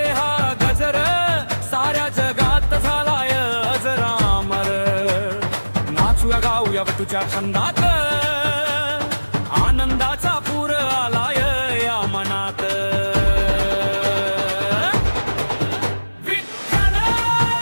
हा गजर, साऱ्या जगात झालाय अजरामर। नाचूया गाऊया तुझ्या छंदात, आनंदाचा पूर आलाय या मनात।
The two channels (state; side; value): inverted; both; correlation -1.00